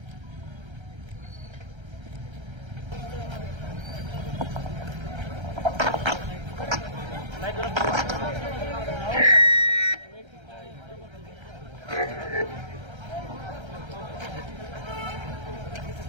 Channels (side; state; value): left; late; 1.3 ms